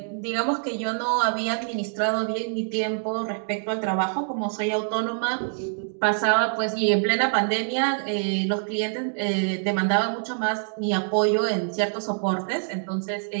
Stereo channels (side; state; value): left; silent; digital silence